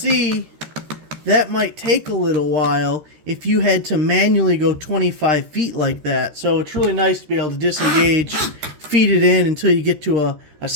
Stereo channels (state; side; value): late; left; 13 ms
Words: that might take a little while if you had to manually go 25 feet like that. So it's really nice to be able to disengage, feed it in until you get to a